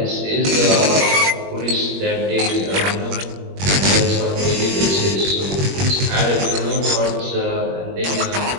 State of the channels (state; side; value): late; left; 21 ms